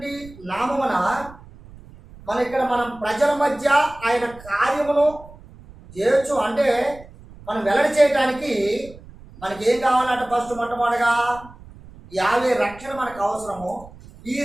నామమున మనం ప్రజల మధ్య ఆయన కార్యమును చేయొచ్చు. అంటే మనం వెల్లడి చేయడానికి మనకి ఏం కావాలంటే ఫస్ట్ మొట్టమొదటిగా యావే రక్షణ మనకు అవసరము. ఈ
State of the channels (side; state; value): right; noise; rumble, 20 dB below the sound